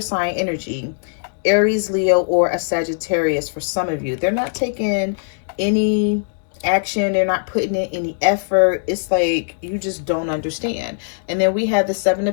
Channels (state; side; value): silent; right; digital silence